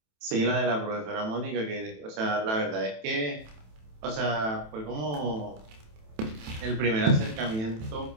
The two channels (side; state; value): left; late; 27 ms